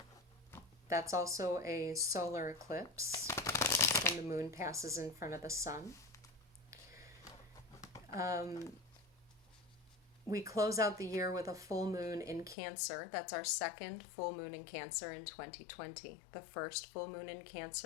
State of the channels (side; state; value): right; drops out; at 12.6 s